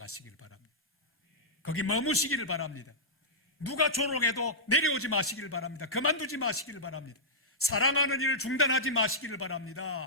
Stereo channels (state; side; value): normal; both; correlation -0.12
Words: 바랍니다. 거기 머무시기를 바랍니다. 누가 조롱해도 내려오지 마시기를 바랍니다. 그만두지 마시기를 바랍니다. 사랑하는 일을 중단하지 마시기를